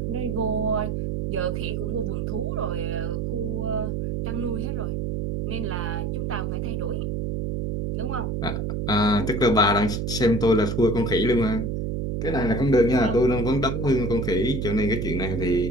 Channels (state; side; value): noise; right; hum, 1 dB below the sound